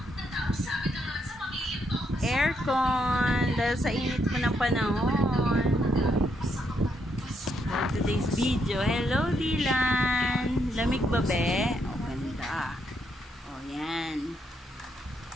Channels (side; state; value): both; normal; correlation 0.77